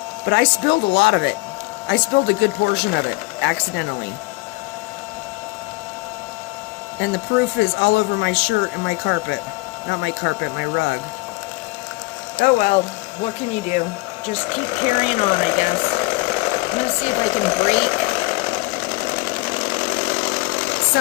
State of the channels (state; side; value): quieter; right; 24.5 dB